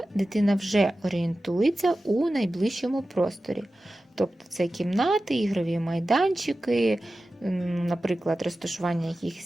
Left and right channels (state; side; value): normal; both; correlation 0.94